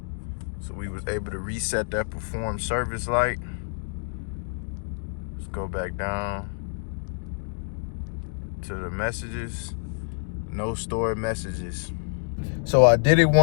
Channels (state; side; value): silent; right; 60 dB below the other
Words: So we was able to reset that perform service light. Let's go back down to the messages. No stored messages. So I did it